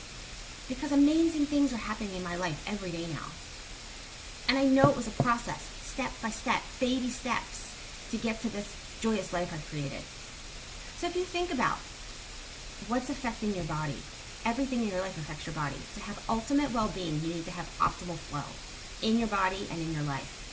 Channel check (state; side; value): identical; both; correlation 1.00